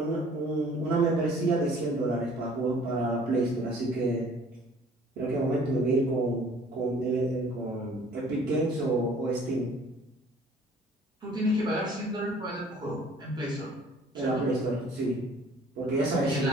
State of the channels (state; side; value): normal; both; correlation 0.54